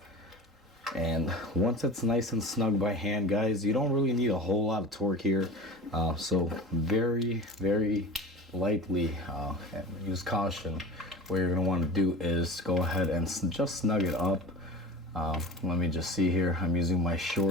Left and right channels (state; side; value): normal; both; correlation 0.33